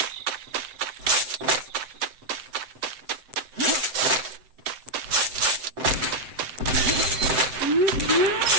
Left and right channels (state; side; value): late; left; 7.8 ms